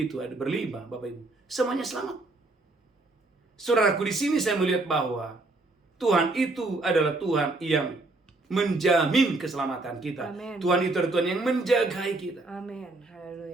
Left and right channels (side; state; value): left; quieter; 3.1 dB